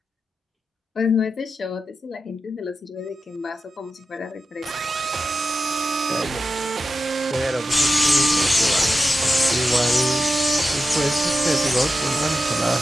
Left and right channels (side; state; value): both; normal; correlation 0.91